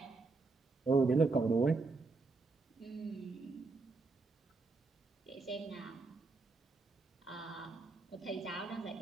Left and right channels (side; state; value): left; quieter; 3.8 dB